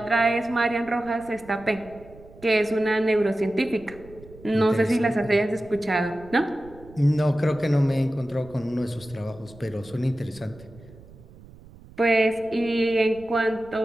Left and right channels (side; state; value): right; noise; rumble, 21 dB below the sound